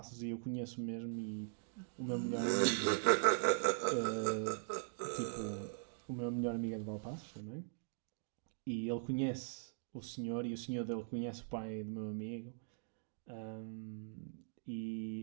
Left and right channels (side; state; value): left; silent; digital silence